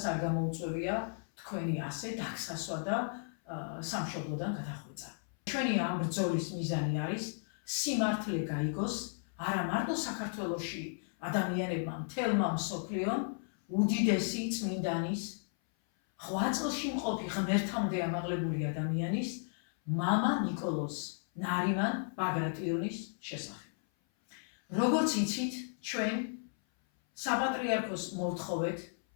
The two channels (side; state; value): right; silent; 55 dB below the other